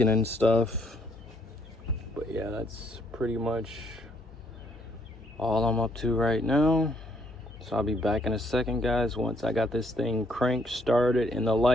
and stuff. But yeah, that's pretty much all I'm up to right now. So I'll be back in a second, guys, once I got this thing cranked started, and the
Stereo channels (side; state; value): both; normal; correlation 0.69